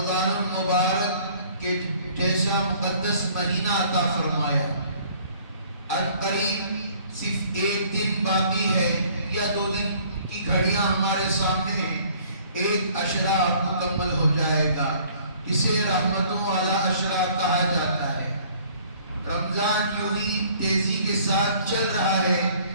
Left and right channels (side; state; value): both; inverted; correlation -0.55